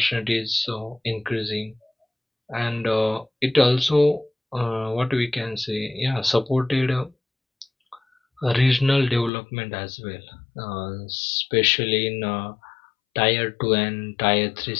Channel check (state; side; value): drops out; right; at 9.3 s